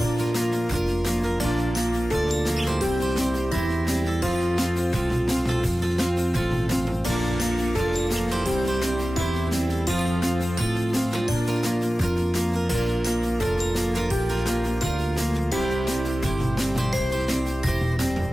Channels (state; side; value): normal; both; correlation 0.95